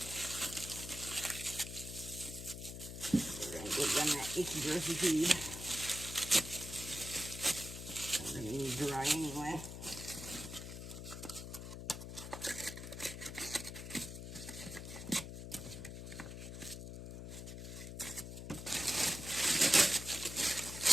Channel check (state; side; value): noise; left; hum, 8 dB below the sound